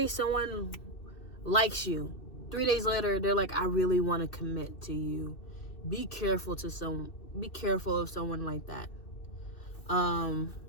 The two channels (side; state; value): right; late; 2.6 ms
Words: someone likes you. 3 days later, they're like, I really want to commit to you. Be careful of someone like that.